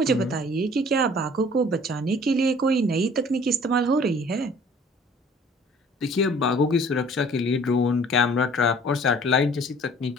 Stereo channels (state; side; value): normal; both; correlation 0.52